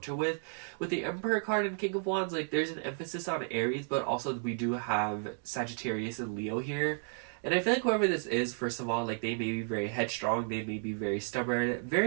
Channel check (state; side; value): silent; left; 56 dB below the other